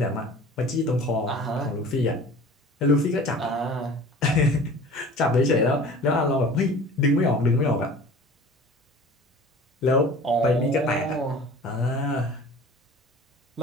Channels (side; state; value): both; normal; correlation 0.43